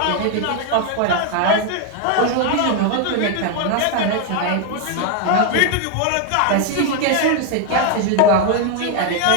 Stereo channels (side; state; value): both; different; correlation 0.01